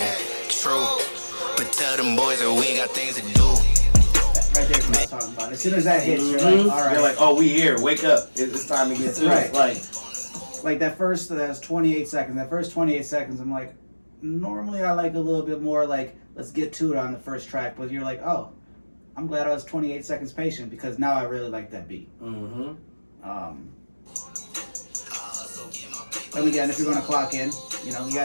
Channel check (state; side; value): inverted; both; correlation -1.00